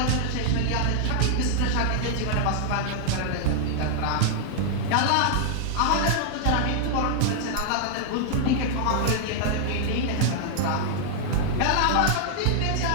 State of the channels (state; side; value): different; both; correlation -0.01